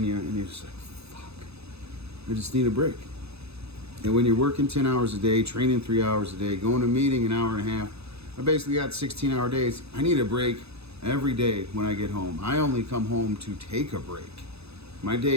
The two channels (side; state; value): left; late; 0.79 ms